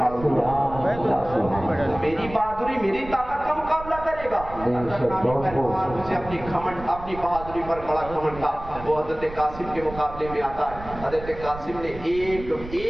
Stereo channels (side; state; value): right; noise; rumble, 13 dB below the sound